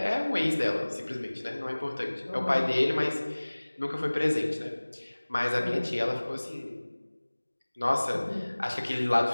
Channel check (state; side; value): inverted; both; correlation -1.00